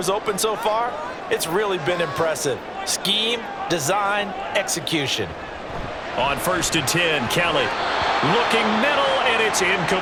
open so far, it's really been impressive. Scheme, design, execution. On 1st and 10, Kelly looking middle, and it's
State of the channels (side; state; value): both; identical; correlation 1.00